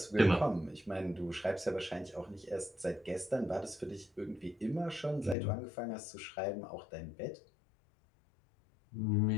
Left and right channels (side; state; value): right; drops out; at 5.4 s